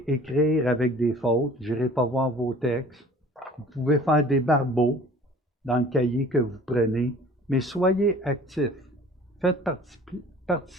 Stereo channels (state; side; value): normal; both; correlation 0.48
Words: écrire avec des fautes. Je n'irai pas voir vos textes. Vous pouvez faire des barbeaux dans le cahier que vous prenez, mais soyez actifs. Faites